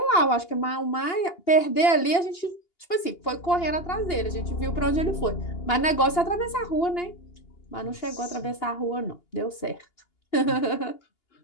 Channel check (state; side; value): late; right; 2.8 ms